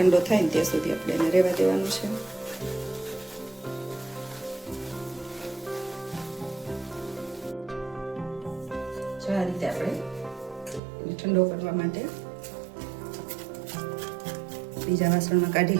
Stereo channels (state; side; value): drops out; left; at 10.8 s